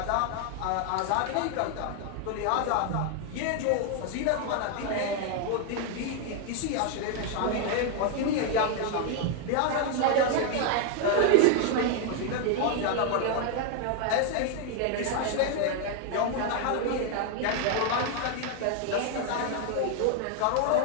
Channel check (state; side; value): different; both; correlation 0.01